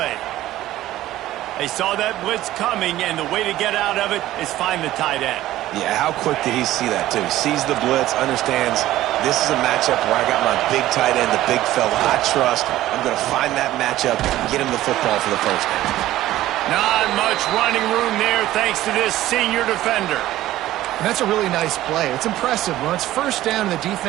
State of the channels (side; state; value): left; quieter; 14.8 dB